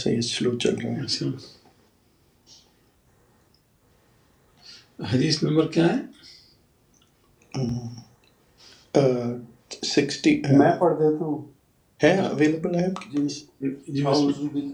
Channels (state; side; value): identical; both; correlation 1.00